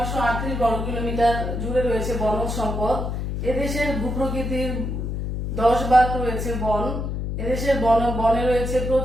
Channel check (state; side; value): noise; left; hum, 3 dB below the sound